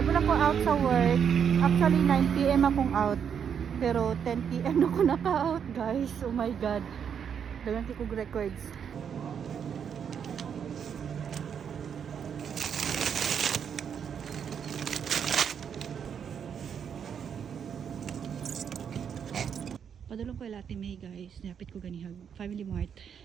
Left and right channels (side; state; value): left; quieter; 7.7 dB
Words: na ko out sa work. Actually 9 PM akong out. Pero 10 PM na ko naka-out, guys. Oh my god. Dagan ko records. Padulong ko yung Latte May, guys. Napit ko ganihag Family Mart.